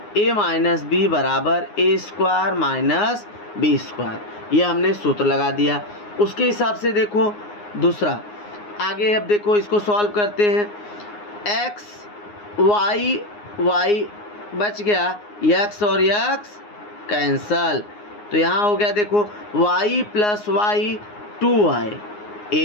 A minus B बराबर A square minus B square, ये हमने सूत्र लगा दिया। उसके हिसाब से देखो दूसरा आगे, अब देखो इसको सॉल्व करते हैं। एक्स वाई बच गया, एक्स और एक्स कैंसल, तो यहाँ हो गया देखो y प्लस वाई 2y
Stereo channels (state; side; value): late; right; 9.6 ms